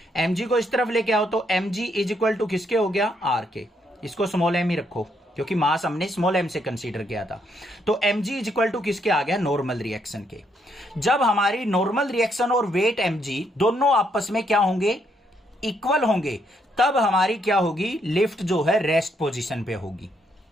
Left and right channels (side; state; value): both; normal; correlation 0.74